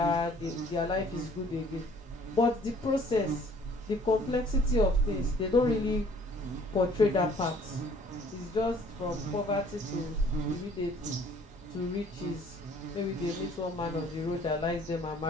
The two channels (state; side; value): normal; both; correlation 0.56